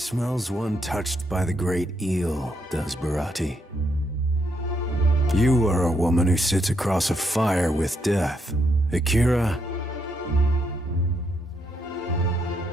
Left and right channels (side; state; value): both; normal; correlation 0.77